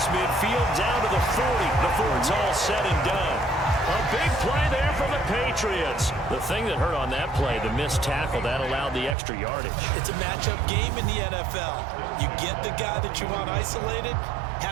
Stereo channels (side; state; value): left; drops out; at 9.2 s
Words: midfield down to the 40 before it's all said and done. A big play there for the Patriots. The thing that hurt on that play, the missed tackle, that allowed the extra yardage. It's a matchup game in the NFL. You get the guy that you want isolated,